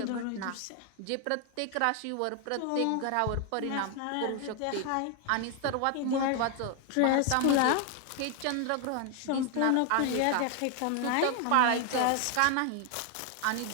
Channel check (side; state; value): both; different; correlation 0.00